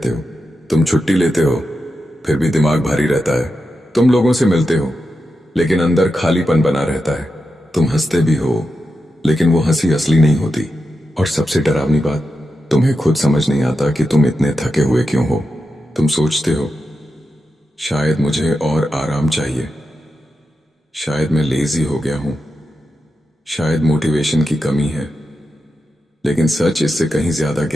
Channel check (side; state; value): both; normal; correlation 0.89